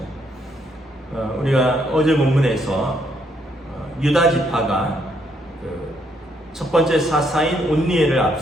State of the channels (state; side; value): normal; both; correlation 0.73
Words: 우리가 어제 본문에서 유다 지파가 첫 번째 사사인 온니엘을